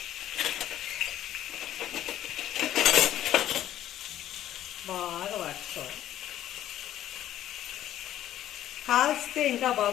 బాగా వాడుకోవాలి. కాల్స్తే ఇంకా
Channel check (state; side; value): quieter; right; 12.3 dB